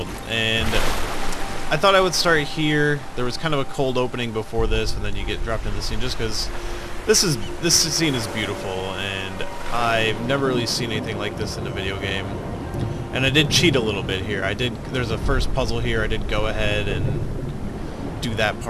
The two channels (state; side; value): identical; both; correlation 1.00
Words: and I thought I would start here. There was kind of a cold opening before this, and then you get dropped into the scene just because this scene is beautiful, and I've never really seen anything like this in a video game. And I did cheat a little bit here. There's a first puzzle here. I did go ahead and do that